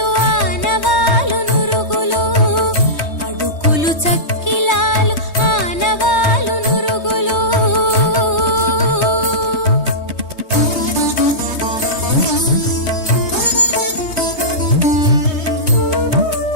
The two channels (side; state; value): right; late; 3.2 ms